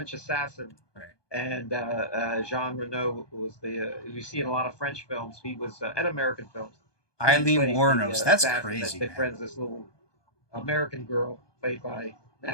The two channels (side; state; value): right; late; 1.2 ms